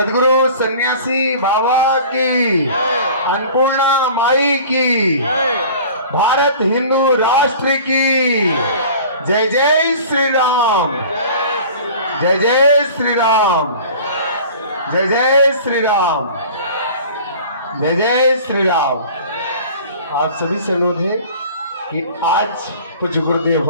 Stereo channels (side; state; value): both; inverted; correlation -0.43